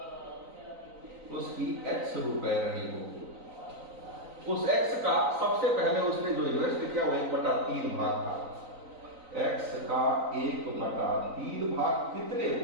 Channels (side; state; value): left; late; 3.9 ms